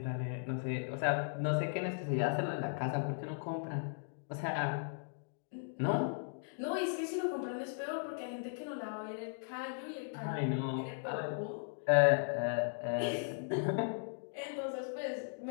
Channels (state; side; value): silent; right; digital silence